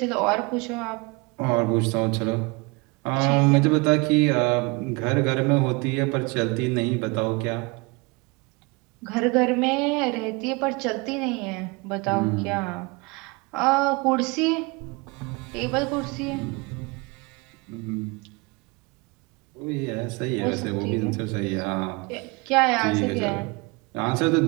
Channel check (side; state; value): left; quieter; 27.2 dB